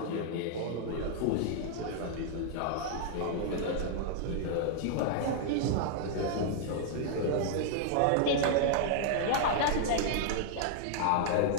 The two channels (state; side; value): different; both; correlation -0.01